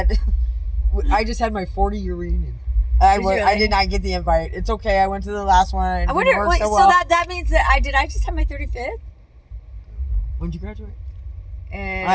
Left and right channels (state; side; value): identical; both; correlation 1.00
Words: I just had my 40-year reunion. I did not get the invite. It's okay. I went to the last one. I wonder. So that means that I just had my 35th. When did you graduate?